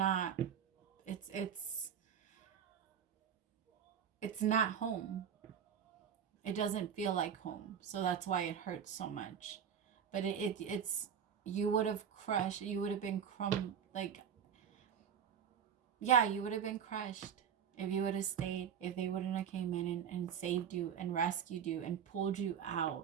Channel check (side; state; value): left; quieter; 8.1 dB